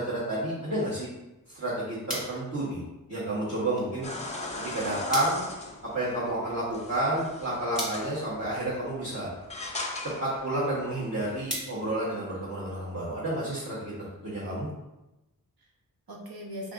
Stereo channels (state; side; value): normal; both; correlation 0.05